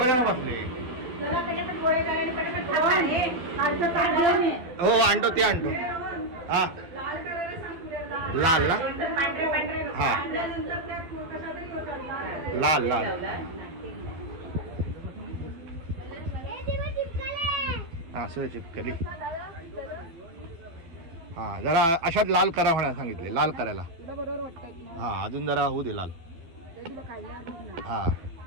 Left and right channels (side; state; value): left; late; 12 ms